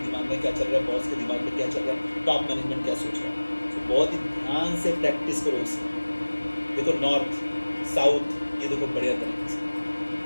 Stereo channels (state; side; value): inverted; both; correlation -1.00